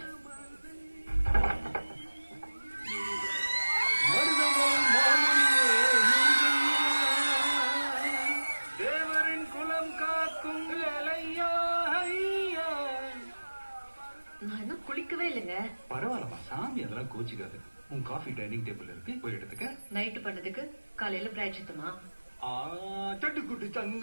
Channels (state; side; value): inverted; both; correlation -1.00